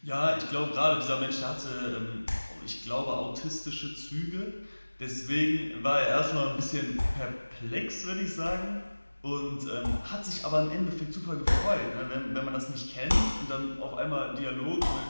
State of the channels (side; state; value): both; inverted; correlation -1.00